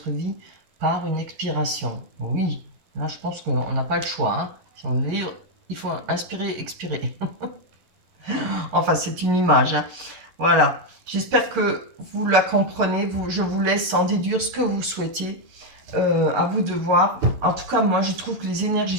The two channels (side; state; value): left; late; 11 ms